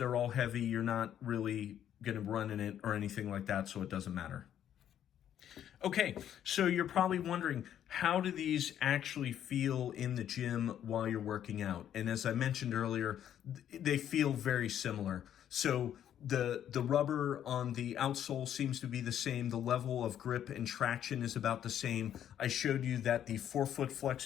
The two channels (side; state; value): right; quieter; 10.3 dB